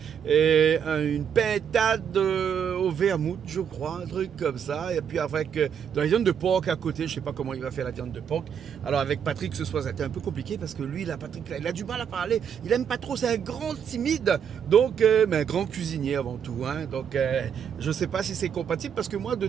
une pintade au vermouth, je crois, un truc comme ça. Et puis avec de la viande de porc à côté. Je sais pas comment il va faire la viande de porc. Alors avec Patrick ce soir, c'était un peu compliqué parce que lui, Patrick, il a du mal à parler. Il aime pas trop. C'est un grand timide. Donc, mais un grand cuisinier avant tout. Donc, je sais pas si c'est compatible parce que moi,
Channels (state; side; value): quieter; left; 7.9 dB